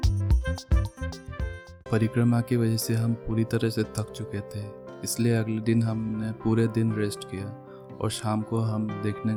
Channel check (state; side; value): identical; both; correlation 1.00